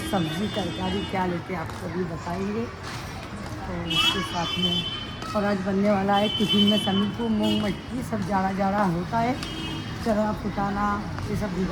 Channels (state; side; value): identical; both; correlation 1.00